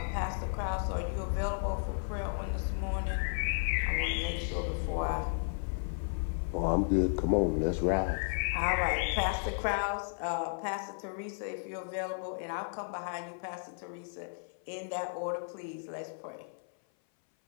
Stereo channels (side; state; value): right; silent; 55 dB below the other